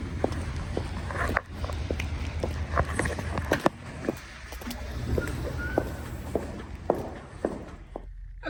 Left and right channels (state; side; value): identical; both; correlation 1.00